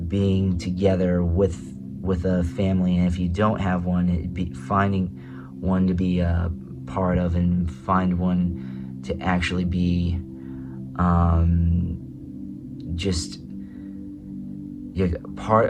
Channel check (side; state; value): both; identical; correlation 1.00